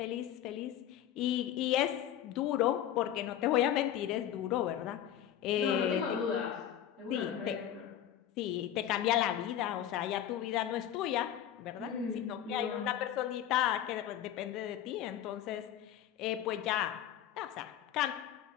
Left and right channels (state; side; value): quieter; right; 10.8 dB